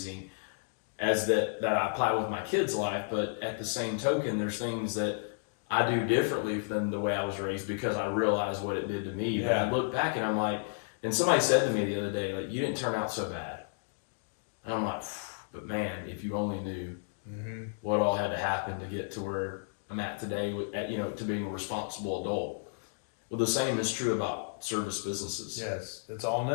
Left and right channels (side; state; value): right; silent; digital silence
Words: that I apply with my kids' life. But at the same token, there's things that I do differently than the way I was raised because I realize what it did to me. Yeah. But I look back and I'm like, and somebody said to me the other day, like, you didn't turn out so bad. And I'm like, but man, if you only knew what all had to happen to get to where I'm at today, to being a responsible adult. Well, the same is true about service businesses. Yes, it's all